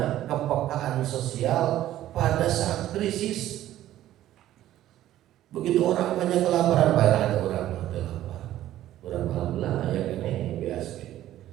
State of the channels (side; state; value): left; quieter; 13.3 dB